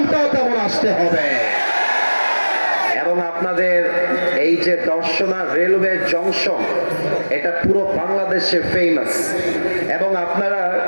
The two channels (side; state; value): both; inverted; correlation -1.00